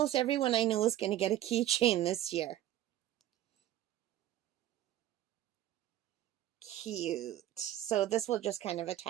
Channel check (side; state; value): left; quieter; 13.2 dB